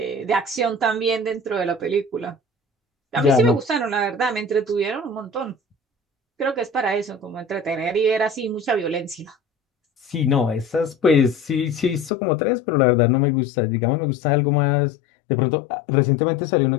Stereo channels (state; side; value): drops out; right; at 12.1 s